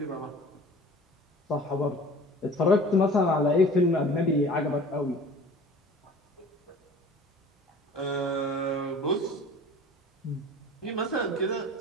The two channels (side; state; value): both; normal; correlation 0.44